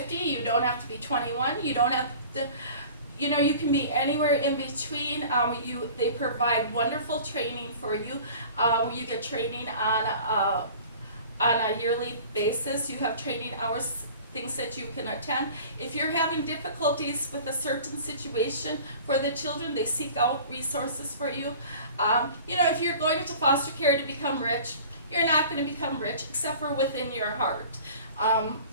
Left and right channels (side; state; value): both; inverted; correlation -0.43